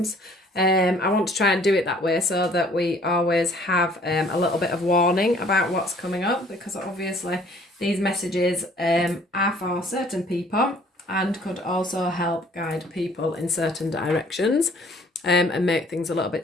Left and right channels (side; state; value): both; normal; correlation 0.56